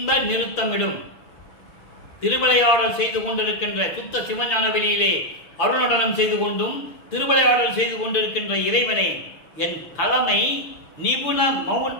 நிறுத்தமிடும். திருவிளையாடல் செய்து கொண்டிருக்கின்ற சுத்த சிவஞான வெளியிலே அருள்நடனம் செய்து கொண்டும் திருவிளையாடல் செய்து கொண்டிருக்கின்ற இறைவனே, என் தலைமை நிபுண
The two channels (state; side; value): late; right; 6.5 ms